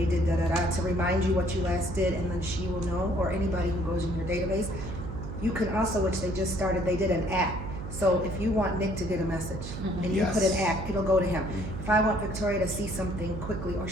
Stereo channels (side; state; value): right; noise; hum, 7 dB below the sound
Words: did da-da-da to remind you what you last did, and then she will know, or anybody who goes in your database. You can also, which they just started, they did an act. So if you want Nick to get a message and you put an act, it'll go to him. If I want Victoria to see something quickly, or